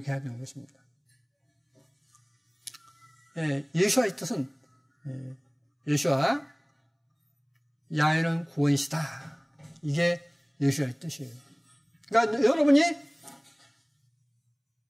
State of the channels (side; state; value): both; identical; correlation 1.00